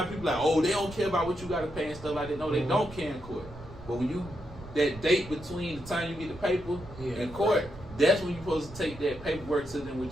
people like, oh, they don't care about what you gotta pay and stuff like that. No, they don't care in court. But when you that date between the time you get the paper and court, that's when you're supposed to take that paperwork to them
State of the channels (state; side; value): noise; right; rumble, 16 dB below the sound